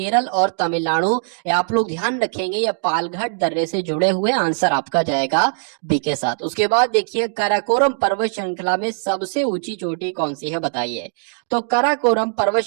और तमिलनाडु। आप लोग ध्यान रखेंगे ये पालघाट दर्रे से जुड़े हुए, आंसर आपका जाएगा बी के साथ। उसके बाद देखिए काराकोरम पर्वत श्रृंखला में सबसे ऊंची चोटी कौन सी है, बताइए। तो काराकोरम पर्वत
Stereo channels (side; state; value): left; silent; digital silence